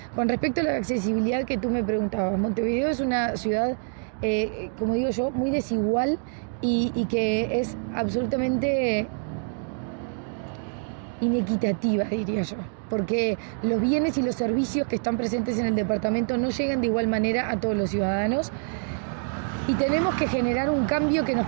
Con respecto a la accesibilidad que tú me preguntabas, Montevideo es una ciudad, como digo yo, muy desigual y que es absolutamente inequitativa, diría yo, porque los bienes y los servicios que están presentes en el departamento no llegan de igual manera a todos los ciudadanos, y tenemos que generar un cambio que nos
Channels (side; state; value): left; silent; 58 dB below the other